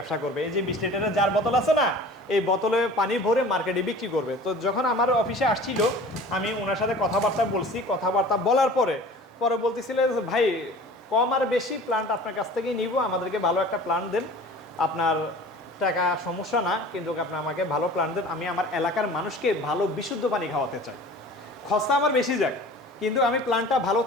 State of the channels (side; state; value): both; normal; correlation 0.42